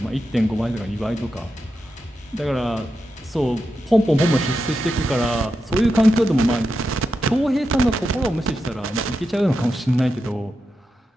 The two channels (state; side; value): normal; both; correlation 0.88